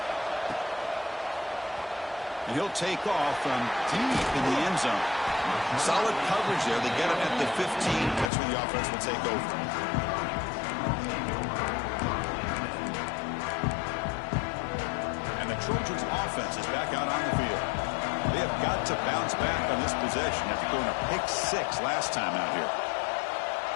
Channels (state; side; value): drops out; right; at 8.3 s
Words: And he'll take off from deep in the end zone. Solid coverage there. They get him at the 15. That's where the offense will take over. Trojans offense is back out on the field. They have got to bounce back on this possession after going a pick 6 last time out here.